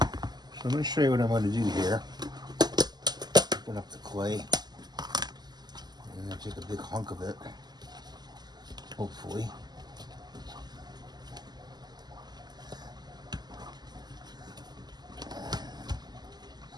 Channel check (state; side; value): late; left; 0.20 ms